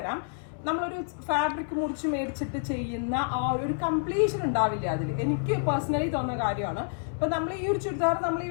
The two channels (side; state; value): right; silent; 58 dB below the other